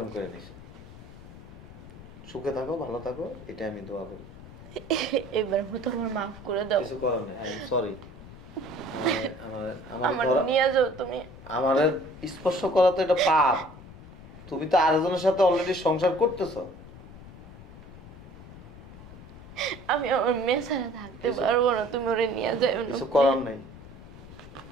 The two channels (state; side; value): noise; left; rumble, 17 dB below the sound